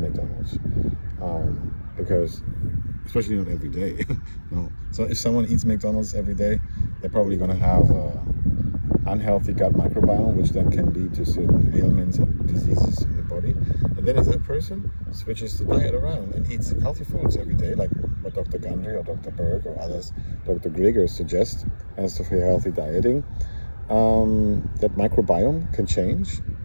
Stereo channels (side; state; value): both; inverted; correlation -1.00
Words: because, especially not every day, no. So if someone eats McDonald's every day, they're probably going to have unhealthy gut microbiome, which then can lead to certain ailments and diseases in the body. And then if that person switches the diet around and eats healthy foods every day, like what Dr. Gundry or Dr. Berg or others, Dr. Grieger suggest as for healthy dieting, that microbiome can change